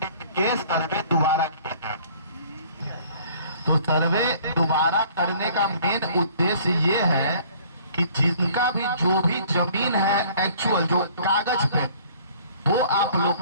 के लिए सर्वे दोबारा किया है। तो सर्वे दोबारा करने का मेन उद्देश्य ये है कि जिनका भी जो भी जमीन है एक्चुअल जो कागज पे, वो आप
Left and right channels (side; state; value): both; inverted; correlation -0.54